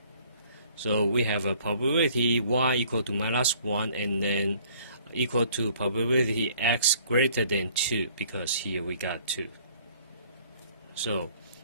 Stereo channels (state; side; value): inverted; both; correlation -0.57